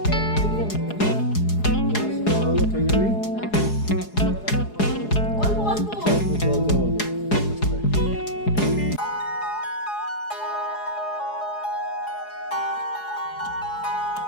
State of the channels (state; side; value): late; right; 4.8 ms